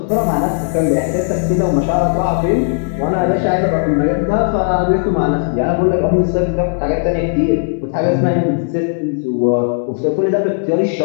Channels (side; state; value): right; silent; 69 dB below the other